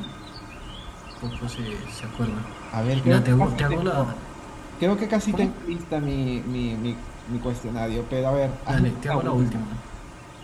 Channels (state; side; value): identical; both; correlation 1.00